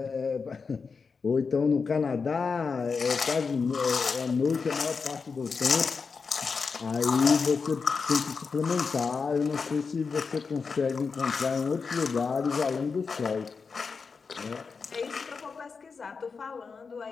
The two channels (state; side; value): quieter; right; 5.1 dB